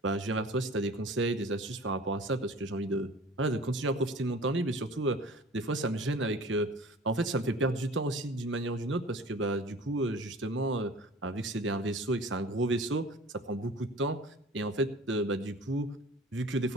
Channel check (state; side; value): normal; both; correlation 0.43